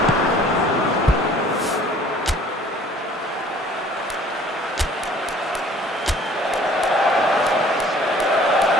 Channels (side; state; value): both; normal; correlation 0.53